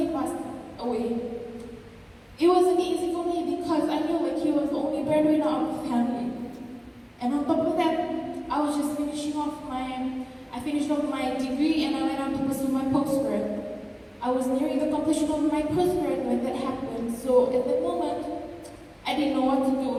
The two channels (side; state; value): both; identical; correlation 1.00